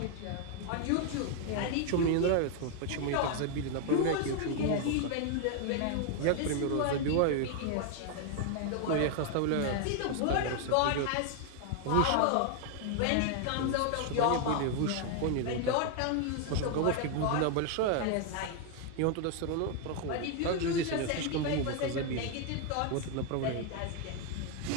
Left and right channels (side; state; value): both; different; correlation 0.00